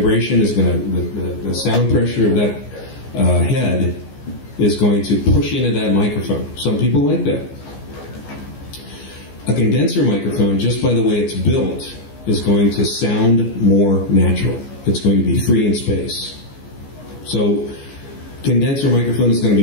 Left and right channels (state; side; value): late; right; 15 ms